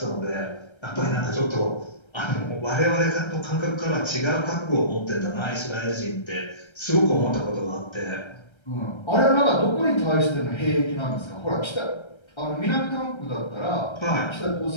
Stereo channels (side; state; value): right; late; 1.3 ms